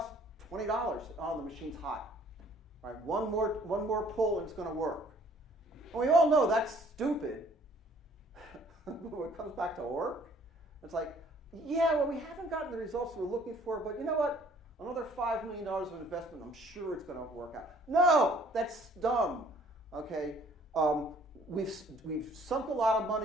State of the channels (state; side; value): normal; both; correlation 0.58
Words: $20. Oh, the machine's hot. Right, one more pull and it's going to work. And we all know that's stupid. When it comes back to work, it's like, yeah, well, we haven't gotten the results we're looking for, but you know what? Another $5 million of investment, I'm sure it's going to work out. No, that's dumb. Okay, we've sunk a lot of